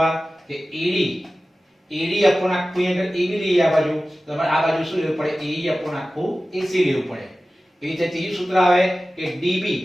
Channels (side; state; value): both; normal; correlation 0.96